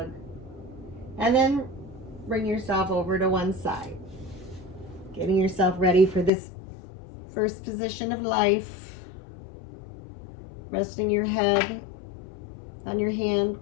And then bring yourself over to one side. Getting yourself ready for this first position of life. Resting your head on your hand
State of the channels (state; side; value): drops out; right; at 6.3 s